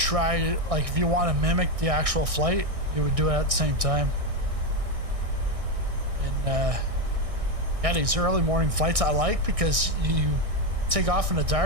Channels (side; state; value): left; late; 1.6 ms